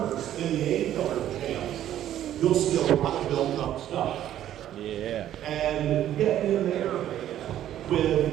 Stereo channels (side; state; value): left; quieter; 11.8 dB